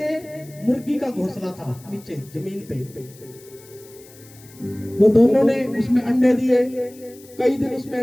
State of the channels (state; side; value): noise; left; hiss, 23 dB below the sound